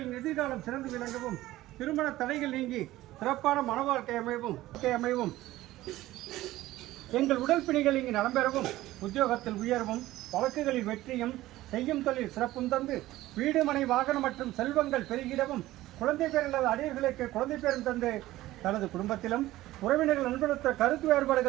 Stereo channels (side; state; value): left; quieter; 16.2 dB